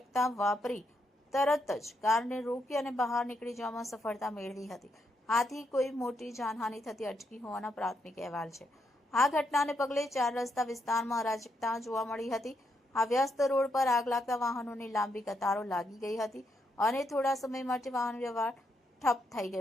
વાપરી તરત જ કારને રોકી અને બહાર નીકળી જવામાં સફળતા મેળવી હતી. આથી કોઈ મોટી જાનહાનિ થતી અટકી હોવાના પ્રાથમિક અહેવાલ છે. આ ઘટનાને પગલે 4 રસ્તા વિસ્તારમાં અરાજકતા જોવા મળી હતી. આ વ્યસ્ત રોડ પર આગ લાગતા વાહનોની લાંબી કતારો લાગી ગઈ હતી અને થોડા સમય માટે વાહન વ્યવહાર ઠપ થઈ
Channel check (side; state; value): both; normal; correlation 0.79